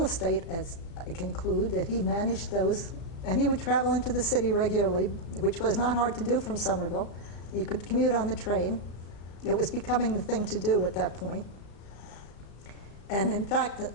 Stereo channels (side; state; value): right; late; 35 ms